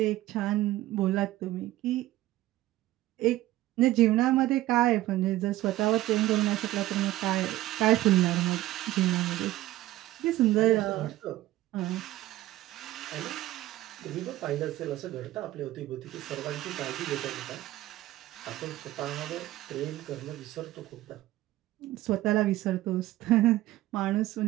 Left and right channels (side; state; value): left; quieter; 16.0 dB